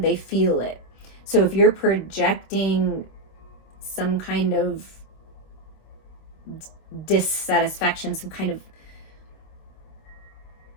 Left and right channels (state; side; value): late; right; 26 ms